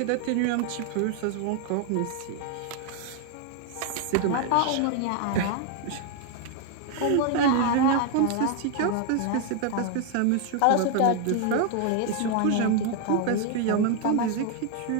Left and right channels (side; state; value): both; different; correlation 0.00